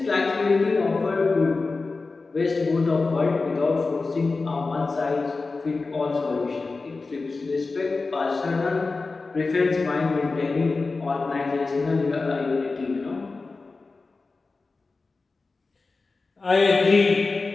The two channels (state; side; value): quieter; right; 3.9 dB